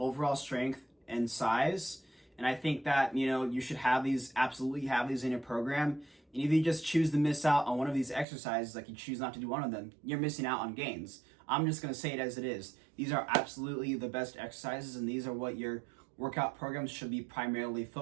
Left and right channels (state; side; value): drops out; left; at 8.2 s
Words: strength and size. And I think that, you should absolutely have these in your program. And if you just choose to miss out on one of these exercises, like you choose not to do one of them, you're missing out on gains. I'm just going to say it as it is. These are absolutely the best exercises, and these are what your workout programs should be primarily